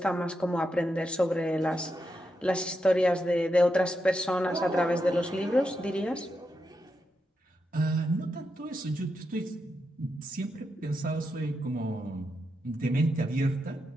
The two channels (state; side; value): normal; both; correlation 0.85